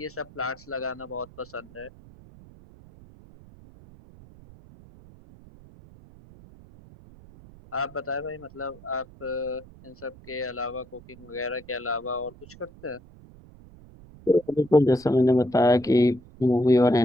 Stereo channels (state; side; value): noise; right; rumble, 22 dB below the sound